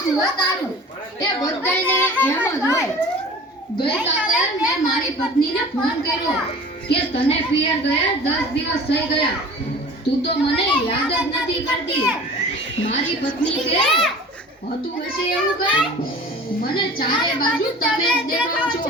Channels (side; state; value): both; normal; correlation 0.42